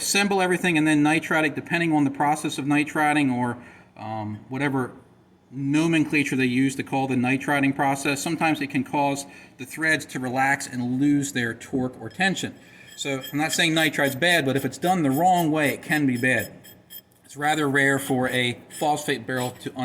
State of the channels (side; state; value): both; identical; correlation 1.00